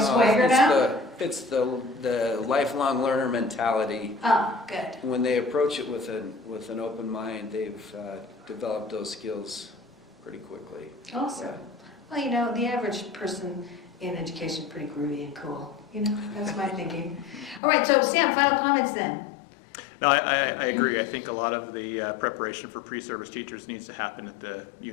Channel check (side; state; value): right; drops out; at 17.6 s